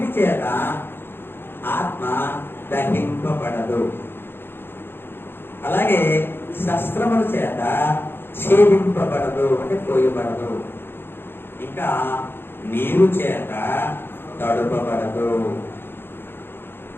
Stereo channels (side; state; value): right; late; 0.10 ms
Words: చేత ఆత్మ దహింపబడదు, అలాగే శస్త్రముల చేత ఛేదింపబడదు అంటే కోయబడదు, ఇంకా నీరు చేత తడుపబడదు.